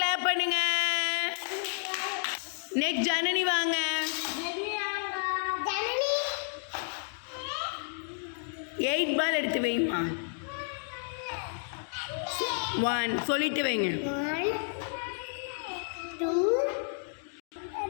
பண்ணுங்க. நெக்ஸ்ட் ஜனனி வாங்க. 8 பால் எடுத்து வைமா. 1 சொல்லிட்டு வைங்க.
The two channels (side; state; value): right; silent; 57 dB below the other